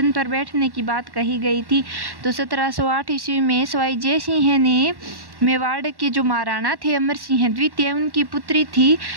पर बैठने की बात कही गई थी। तो 1708 ईस्वी में स्वाई जय सिंह ने मेवाड़ के जो महाराणा थे अमर सिंह द्वितीय, उनकी पुत्री थी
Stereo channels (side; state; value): left; late; 1.1 ms